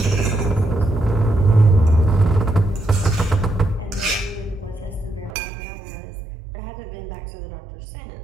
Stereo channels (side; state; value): left; drops out; at 5.4 s